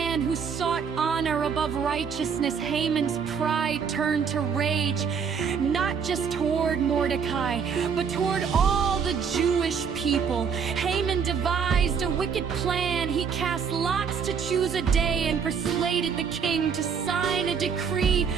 who sought honor above righteousness. Haman's pride turned to rage, not just toward Mordecai, but toward all the Jewish people. Haman devised a wicked plan. He cast lots to choose a day and persuaded the king to sign a decree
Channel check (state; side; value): quieter; left; 6.5 dB